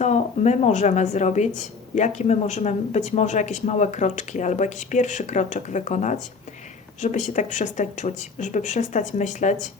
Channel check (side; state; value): right; quieter; 4.8 dB